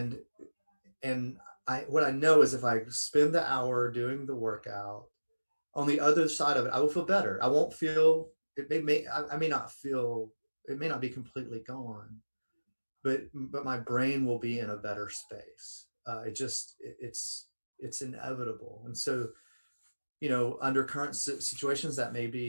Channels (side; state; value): both; inverted; correlation -1.00